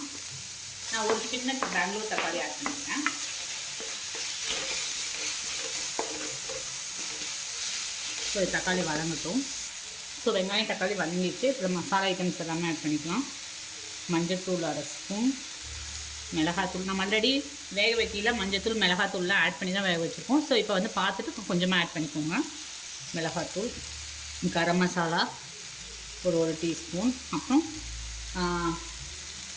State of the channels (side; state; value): both; identical; correlation 1.00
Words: நான் ஒரு சின்ன பெங்களூர் தக்காளி ஆட் பண்ணிக்கிறேன். ஸோ தக்காளி வதங்கட்டும். ஸோ வெங்காயம் தக்காளி வதங்கிடுச்சு. அப்புறம் மசாலா ஐட்டம்ஸ் எல்லாமே ஆட் பண்ணிக்கலாம். மஞ்சத்தூள் 1/2 ஸ்பூன், மிளகாத்தூள் நம்ம ஆல்ரெடி வேக வைக்கல மஞ்சத்தூள் மிளகாத்தூள்லாம் ஆட் பண்ணி தான் வேக வச்சுருக்கோம். ஸோ இப்போ வந்து பார்த்துட்டு கொஞ்சமாக ஆட் பண்ணிக்கோங்க. மிளகாத்தூள், கரம் மசாலா ஒரு 1 டீஸ்பூன், அப்புறம்